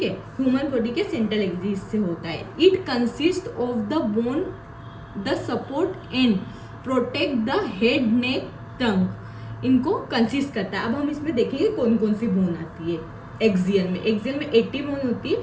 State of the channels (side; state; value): both; identical; correlation 1.00